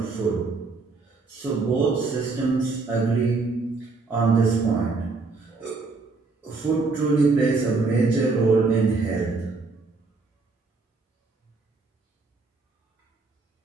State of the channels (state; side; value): quieter; left; 4.0 dB